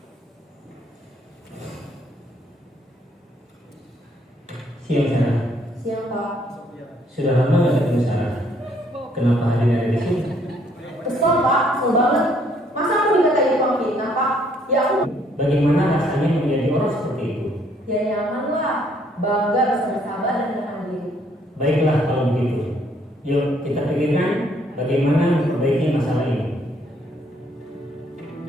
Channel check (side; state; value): both; normal; correlation 0.66